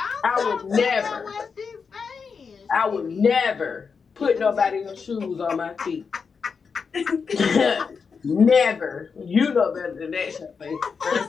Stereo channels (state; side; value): quieter; right; 5.6 dB